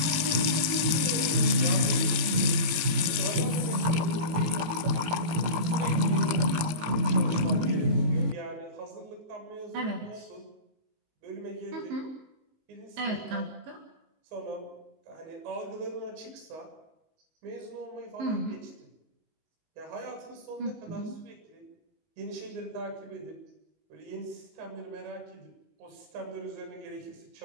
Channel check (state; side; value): late; left; 18 ms